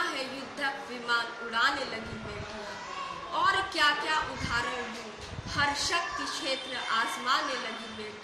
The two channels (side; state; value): both; identical; correlation 1.00